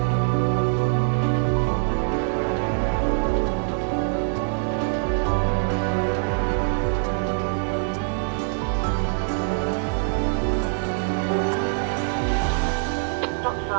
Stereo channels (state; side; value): silent; left; digital silence